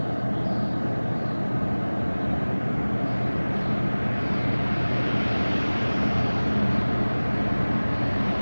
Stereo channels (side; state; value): both; inverted; correlation -1.00